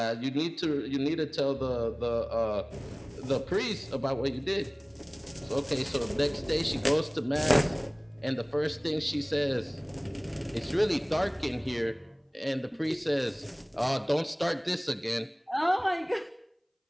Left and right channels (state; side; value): identical; both; correlation 1.00